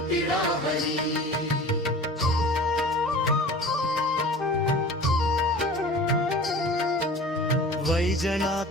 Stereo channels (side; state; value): both; normal; correlation 0.40